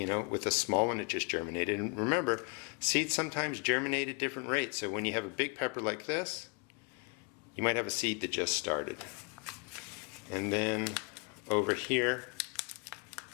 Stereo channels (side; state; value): right; quieter; 33.3 dB